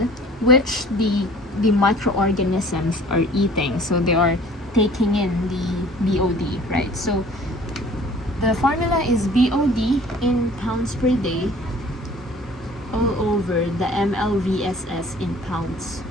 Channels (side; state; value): both; normal; correlation 0.50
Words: which the microorganisms are eating. So they are taking in the BOD, right? So the formula is BOD in pounds per day all over the MLVSS in pounds.